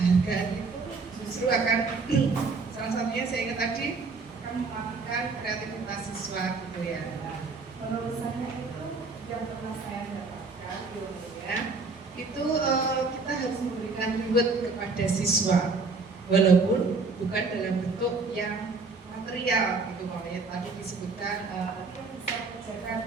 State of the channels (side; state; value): left; quieter; 4.1 dB